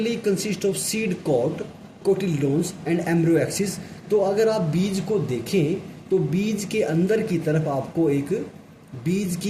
consist of seed coat, cotyledons and embryo axis. तो अगर आप बीज को देखें तो बीज के अंदर की तरफ आपको एक बीज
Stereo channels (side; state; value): both; identical; correlation 1.00